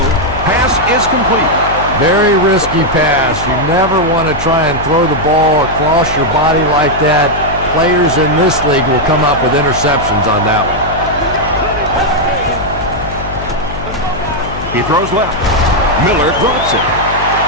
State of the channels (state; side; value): noise; left; hum, 10 dB below the sound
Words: Pass is complete. Very risky pass. You never want to try and throw the ball across your body like that. Players in this league will come up with interceptions on that one. He throws left. Miller drops it.